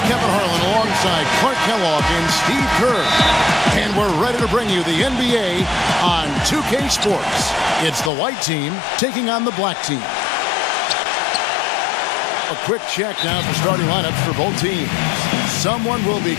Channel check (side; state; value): right; drops out; at 8.1 s